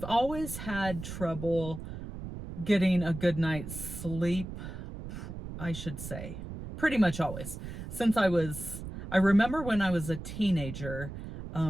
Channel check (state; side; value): noise; right; rumble, 9 dB below the sound